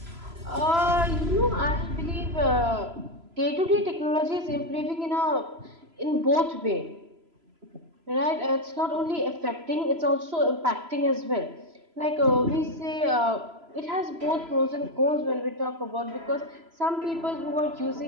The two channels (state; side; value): late; left; 3.0 ms